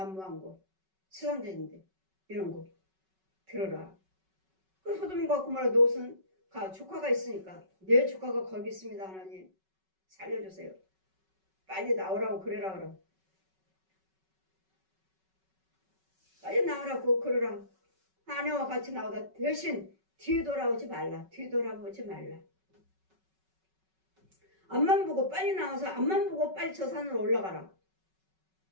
곳 세상죄인데 이런 곳 들어라. 그 소돔과 고모라 노릇은 조카가 있으니까 내 조카가 거기 있습니다. 하나님 살려주세요. 빨리 나오라고 그래라 그럼. 빨리 나오라고 그러라. 아내와 같이 나오다 대신 뒤돌아오지 말라. 뒤돌아보지 말라. 앞만 보고 빨리 나와서 앞만 보고 빨리 저 산으로 올라가라.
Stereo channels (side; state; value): left; late; 5.3 ms